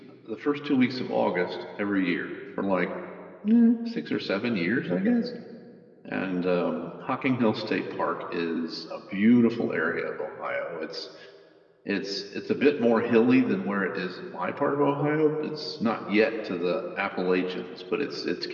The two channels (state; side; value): identical; both; correlation 1.00